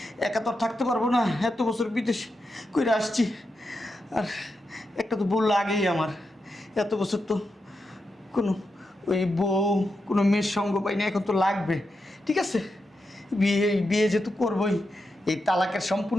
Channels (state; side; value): normal; both; correlation 0.87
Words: একা তো আর থাকতে পারবো না, এত বছর বিদেশ করে আসছি। আর একটা তো বললো আগেই আমার, এত বছর তো কোনো ওই বউ কোনো মেয়ের সঙ্গ পাই না, এখন তো লাগবে। ঠিক আছে, বিয়ে যেহেতু করবোই, এই তালাকের